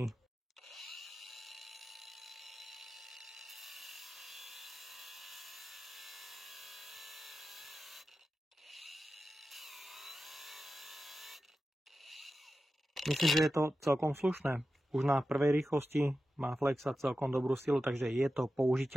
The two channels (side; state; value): both; normal; correlation 0.92